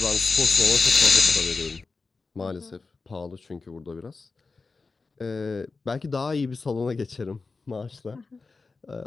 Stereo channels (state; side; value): quieter; right; 4.1 dB